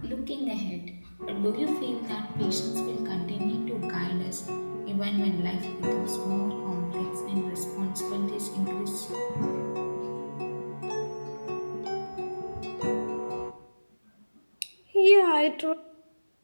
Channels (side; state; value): both; inverted; correlation -1.00